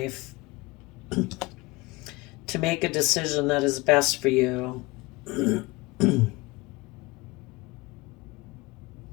to make a decision that is best for you.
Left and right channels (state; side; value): quieter; right; 22.9 dB